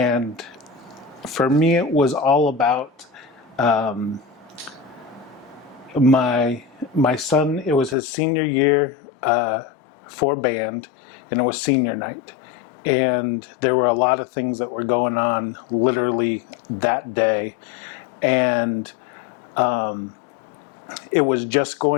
for me, it was all about my son. It was his senior year for band, and it was senior night. And there were a lot of things that were going on literally that day. And it was just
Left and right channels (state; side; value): drops out; right; at 8.0 s